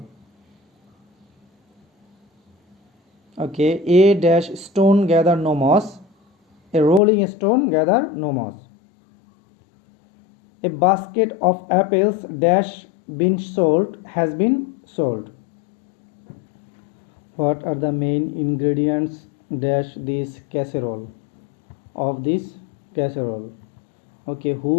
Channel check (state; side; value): drops out; right; at 7.0 s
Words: Okay, a dash stone gather no moss. A rolling stone gather no moss. A basket of apples dash been sold has been sold. What are the main ingredients dash this casserole? Of this casserole. Okay, who